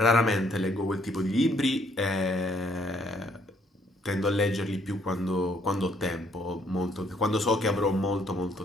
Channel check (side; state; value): both; normal; correlation 0.67